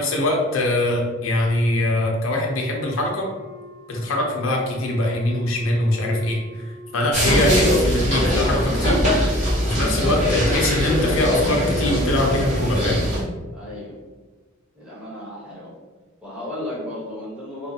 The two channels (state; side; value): normal; both; correlation 0.49